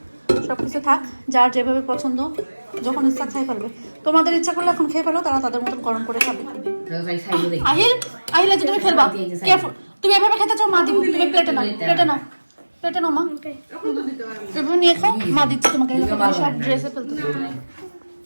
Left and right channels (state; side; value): inverted; both; correlation -1.00